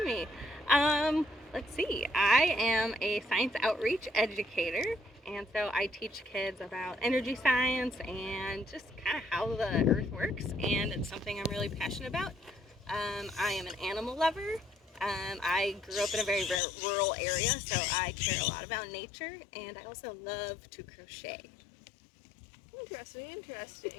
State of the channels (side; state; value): right; drops out; at 16.6 s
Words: me. Let's see. I am a science outreach educator, and so I teach kids about energy science and just kind of how the earth works, and it's something I'm really passionate about. I am an animal lover. I grew up in a very rural area, so I care a lot about nature, and I also love to crochet.